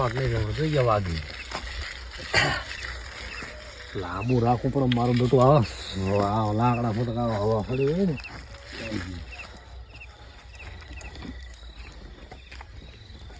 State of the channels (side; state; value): both; identical; correlation 1.00